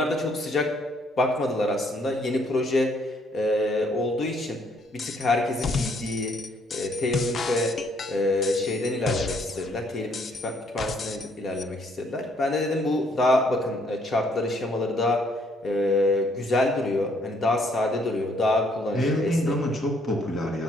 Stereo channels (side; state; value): both; normal; correlation 0.67